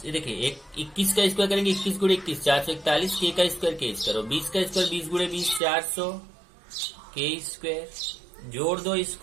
देखिए 21 का स्क्वायर करेंगे, 21 गुणे 21 441k का स्क्वायर k स्क्वायर, और 20 का स्क्वायर 20 गुणे 20 400k स्क्वायर। जोड़ दो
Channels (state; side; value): drops out; left; at 5.6 s